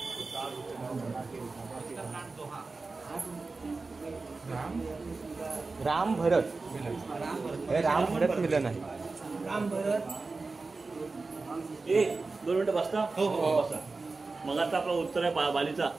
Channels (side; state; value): left; quieter; 3.8 dB